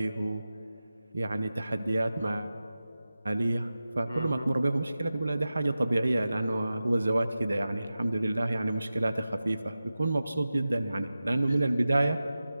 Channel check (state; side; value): inverted; both; correlation -0.94